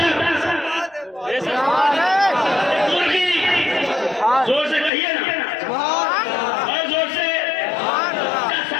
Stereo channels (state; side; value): drops out; right; at 4.9 s